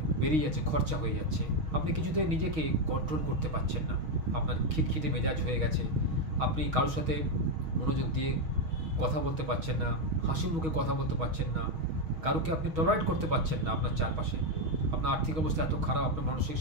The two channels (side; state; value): left; late; 6.3 ms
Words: বেরিয়ে যাচ্ছে, খরচা হয়ে যাচ্ছে। আপনি কিছুতে নিজেকে কন্ট্রোল করতে পারছেন না, আপনার খিটখিটে মেজাজ হয়ে গেছে, আপনি কারোর সাথে মনোযোগ দিয়ে কথা বলতে পারছেন না, হাসি মুখে কথা বলতে পারছেন না, কারোকে আপনি টলারেট করতে পারছেন না আপনার চারপাশে। আপনার আর্থিক অবস্থা এত খারাপ, আপনার মানসিক